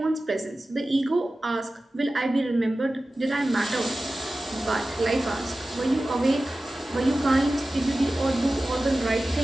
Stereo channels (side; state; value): both; normal; correlation 0.95